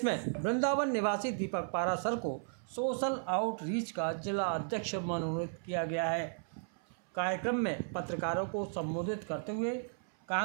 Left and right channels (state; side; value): silent; left; 54 dB below the other